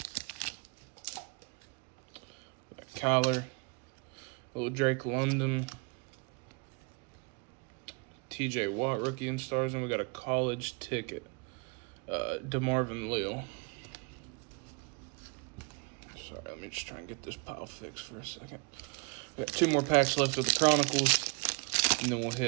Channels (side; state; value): left; quieter; 32.1 dB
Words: Kyler, little Drake London, TJ Watt, rookie in stars, and we got a college ticket, DeMarvin Leal. Sorry, let me just try and get this pile fixed for a second. We got 2 more packs left of the Chronicles, and then we'll